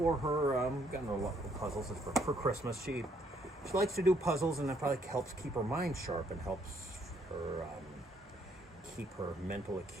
her. Gotten her a lot of puzzles. It's for Christmas. She likes to do puzzles, and that probably helps keep her mind sharp and helps her keep her mental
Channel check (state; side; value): normal; both; correlation 0.69